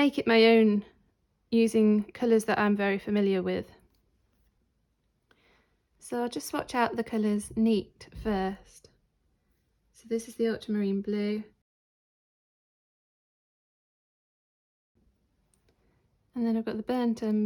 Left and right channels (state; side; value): identical; both; correlation 1.00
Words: it my own using colours that I'm very familiar with. So I'll just swatch out the colours neat first. So this is the ultramarine blue. And then I've got the burnt